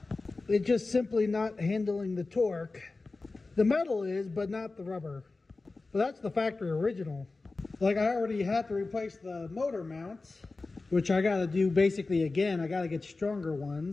It's just simply not handling the torque. The metal is, but not the rubber. But that's the factory original. Like, I already had to replace the motor mounts, which I gotta do basically again. I gotta get stronger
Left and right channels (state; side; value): quieter; right; 3.6 dB